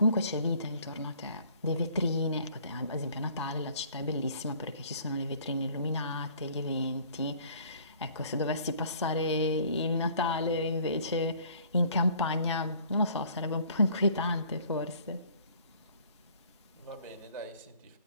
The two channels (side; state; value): both; inverted; correlation -0.55